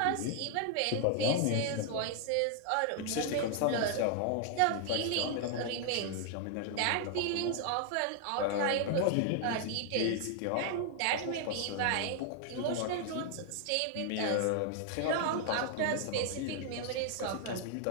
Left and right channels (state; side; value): different; both; correlation 0.00